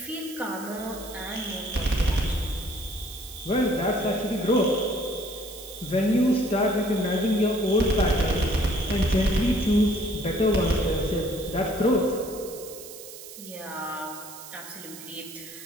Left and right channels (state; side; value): noise; right; hiss, 14 dB below the sound